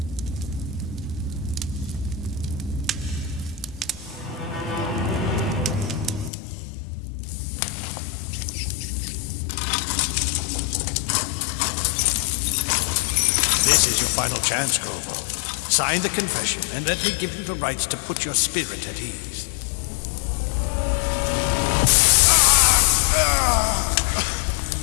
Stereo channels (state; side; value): drops out; right; at 6.3 s